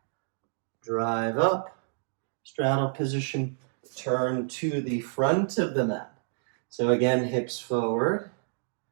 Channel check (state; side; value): silent; left; digital silence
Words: Drive up. Straddle position. Turn to the front of the mat. So again, hips forward.